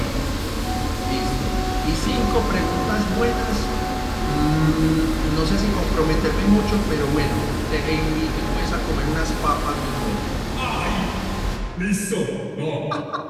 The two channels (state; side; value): identical; both; correlation 1.00